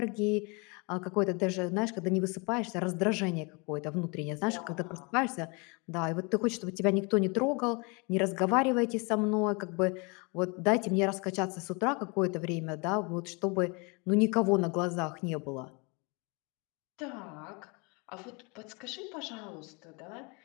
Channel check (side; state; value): right; quieter; 30.6 dB